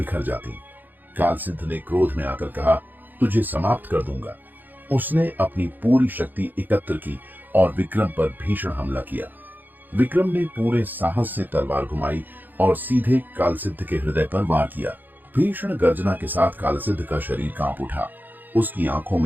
जाती। काल सिद्ध ने क्रोध में आकर कहा, तुझे समाप्त कर दूंगा। उसने अपनी पूरी शक्ति एकत्र की और विक्रम पर भीषण हमला किया। विक्रम ने पूरे साहस से तलवार घुमाई और सीधे काल सिद्ध के हृदय पर वार किया। भीषण गर्जना के साथ काल सिद्ध का शरीर कांप उठा। उसकी आंखों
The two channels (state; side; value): late; left; 0.087 ms